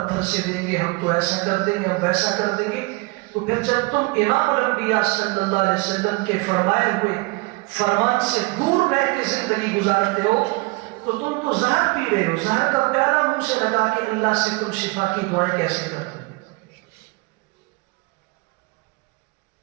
سے دیں گے، ہم تو ایسا کر دیں گے، ہم ویسا کر دیں گے۔ تو پھر جب تم امام الانبیاء صلی اللہ علیہ وسلم کے فرمائے ہوئے فرمان سے دور رہ کے زندگی گزارتے ہو تو تم تو زہر پی رہے ہو، زہر کا پیالہ منہ سے لگا کے اللہ سے تم شفا کی دعائیں کیسے کرتے ہو؟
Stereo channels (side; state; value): left; quieter; 26.3 dB